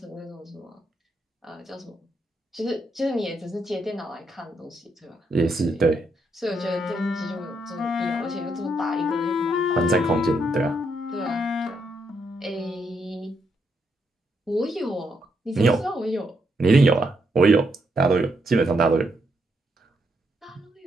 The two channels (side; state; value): both; normal; correlation 0.78